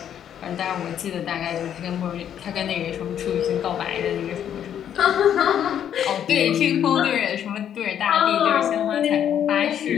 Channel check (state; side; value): quieter; right; 9.6 dB